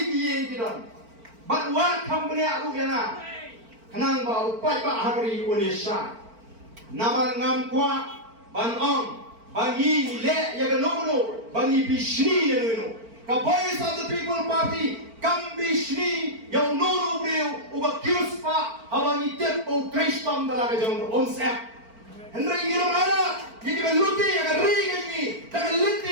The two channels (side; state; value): left; late; 4.5 ms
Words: ki ye ki don bat wa company aku yana kanang ba upai ba hari Indonesia naman ngam kwa ban ong bangi le ya ga no bangi bishni yenu ka voice of the people party kam bishni yang nono breu uba kiuspa abangi tempo kristam dalaga jong onsep hendra yiro mana yidi beluti ya ri gani daga linti